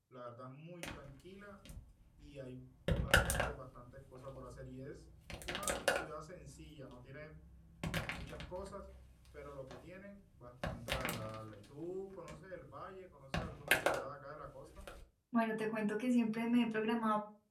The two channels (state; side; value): identical; both; correlation 1.00